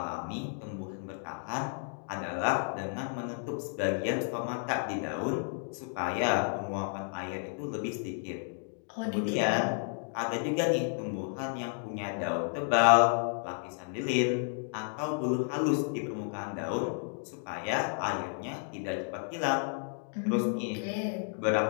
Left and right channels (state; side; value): silent; right; 56 dB below the other